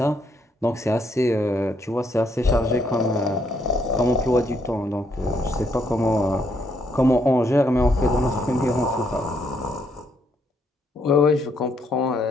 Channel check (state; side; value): normal; both; correlation 0.73